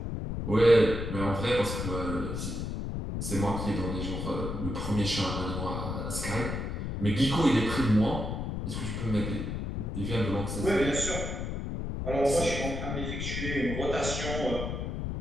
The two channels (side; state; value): left; noise; rumble, 4 dB below the sound